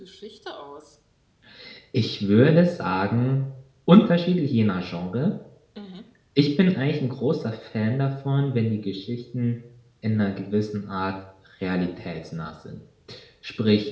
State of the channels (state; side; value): identical; both; correlation 1.00